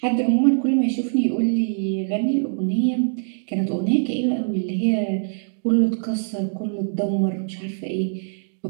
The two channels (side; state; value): left; silent; digital silence